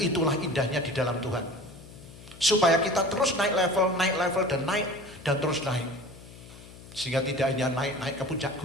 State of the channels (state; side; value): noise; left; hum, 18 dB below the sound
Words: indahnya di dalam Tuhan. Supaya kita terus naik level, dan terus naik. Sehingga tidak hanya naik ke puncak